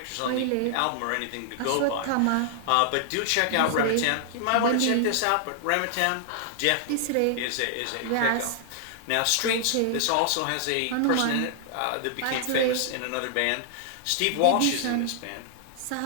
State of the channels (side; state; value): both; different; correlation 0.00